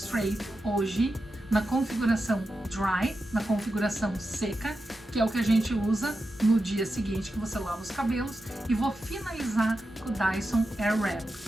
hoje na configuração Dry, na configuração seca, que é o que a gente usa no dia seguinte que você lava os cabelos, e vou finalizar com o Dyson Airwrap.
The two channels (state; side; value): normal; both; correlation 0.90